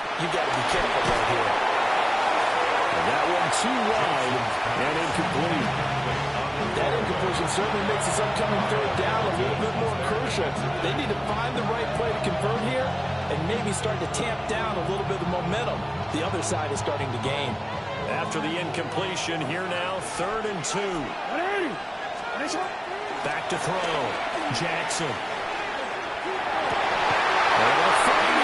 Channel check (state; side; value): identical; both; correlation 1.00